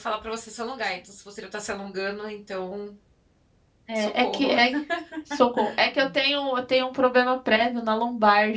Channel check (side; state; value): both; identical; correlation 1.00